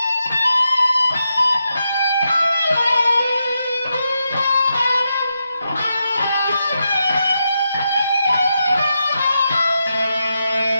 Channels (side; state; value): both; inverted; correlation -0.85